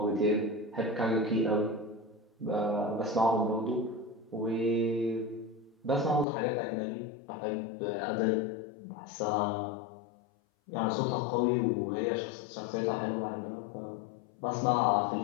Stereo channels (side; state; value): right; drops out; at 6.2 s